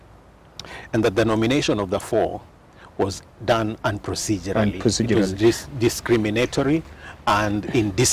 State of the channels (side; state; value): both; identical; correlation 1.00